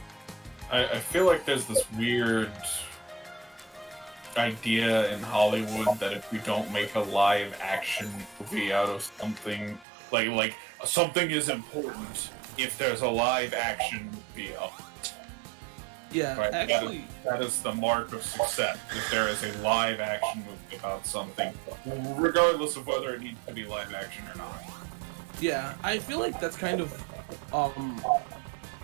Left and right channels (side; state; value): left; drops out; at 9.9 s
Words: I feel like there's this weird idea in Hollywood that if you don't make a live action movie out of something, like something is important if there's a live action movie of it. Yeah, Right? actually, That is the mark of success, if there is a live action movie about something, regardless of whether it needs to be live action or not. yeah, I feel like that's kind of